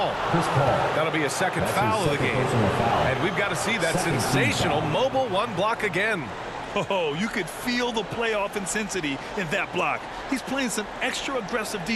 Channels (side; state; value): both; identical; correlation 1.00